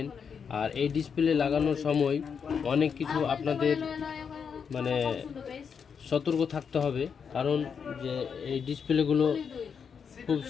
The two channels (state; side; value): quieter; right; 6.6 dB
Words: আর এই ডিসপ্লে লাগানোর সময় অনেক কিছু আপনাদের মানে সতর্ক থাকতে হবে, কারণ যে এই ডিসপ্লেগুলো খুব